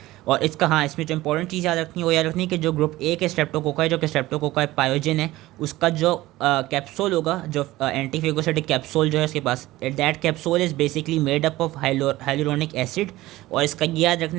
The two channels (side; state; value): left; quieter; 17.4 dB